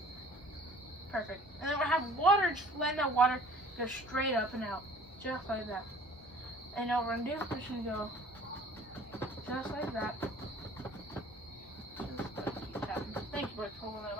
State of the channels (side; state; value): both; normal; correlation 0.51